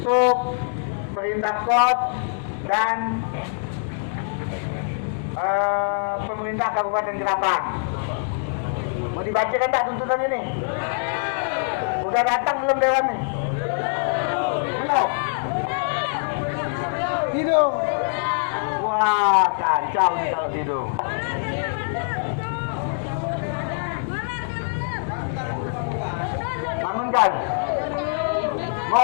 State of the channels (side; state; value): right; silent; digital silence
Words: perintah kod dan pemerintah Kabupaten Ketapang. Mau dibacakan tak tuntutan ini? Udah datang belum dewan nih? Belum? Hidung. Wah, kacau nih kalau hidung. Bangunkan. Mau